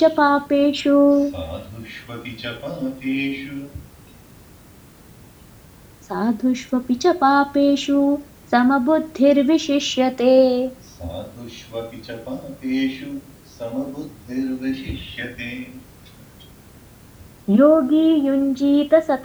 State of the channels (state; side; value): identical; both; correlation 1.00